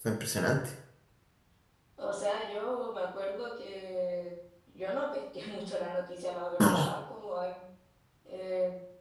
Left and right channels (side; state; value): both; identical; correlation 1.00